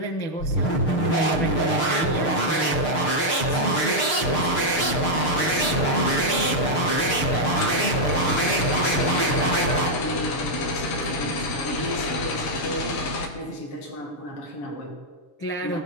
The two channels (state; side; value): late; right; 6.7 ms